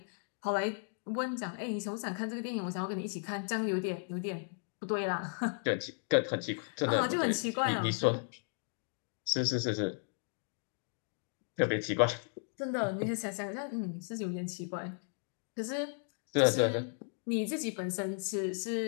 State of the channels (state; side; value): silent; right; 54 dB below the other